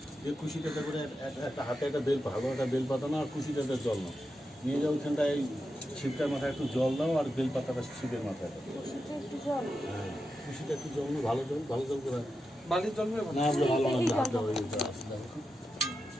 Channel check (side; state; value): both; normal; correlation 0.88